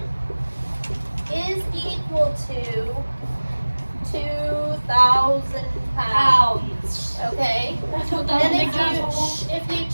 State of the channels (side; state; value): both; inverted; correlation -1.00